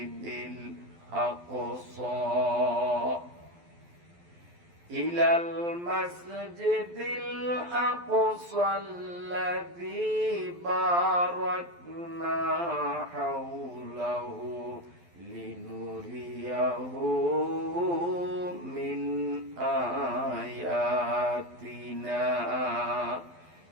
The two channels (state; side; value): late; left; 12 ms